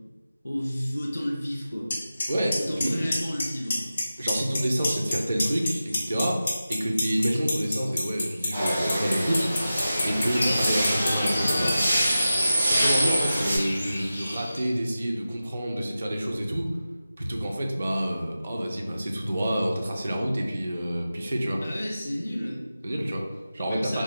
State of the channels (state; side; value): inverted; both; correlation -0.94